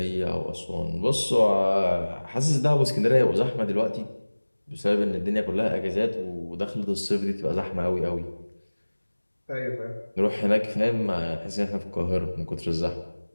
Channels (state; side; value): inverted; both; correlation -1.00